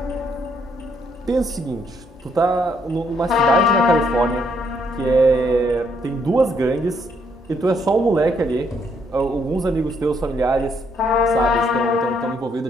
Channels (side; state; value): both; normal; correlation 0.71